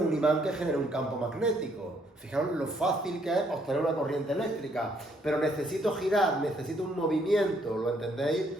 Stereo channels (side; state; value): both; normal; correlation 0.69